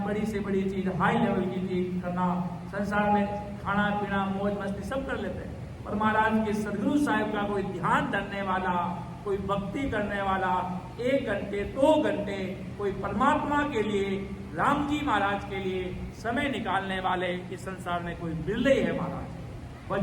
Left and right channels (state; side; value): identical; both; correlation 1.00